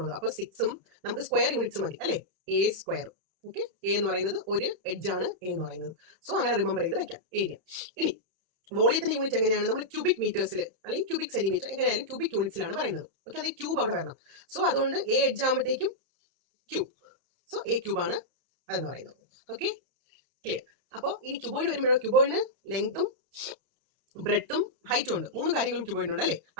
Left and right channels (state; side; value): late; left; 31 ms